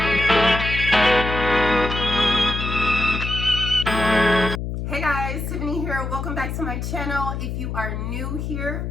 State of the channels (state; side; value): noise; left; hum, 4 dB below the sound